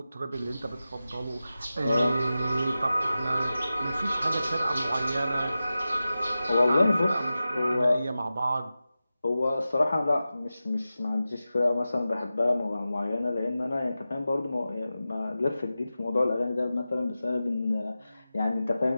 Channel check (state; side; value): inverted; both; correlation -0.94